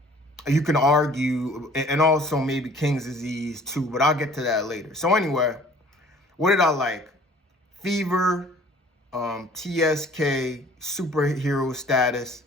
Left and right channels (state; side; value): normal; both; correlation 0.53